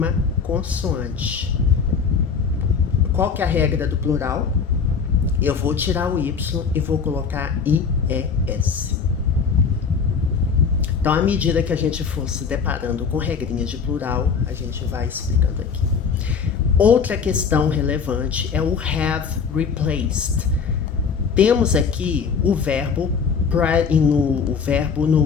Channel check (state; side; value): quieter; right; 5.9 dB